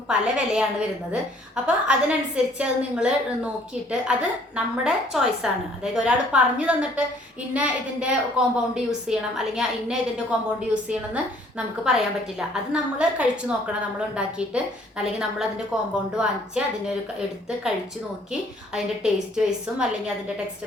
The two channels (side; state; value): both; normal; correlation 0.60